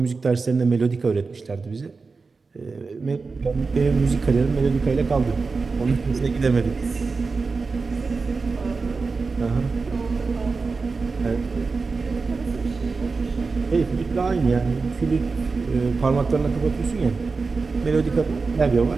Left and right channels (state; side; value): quieter; left; 4.3 dB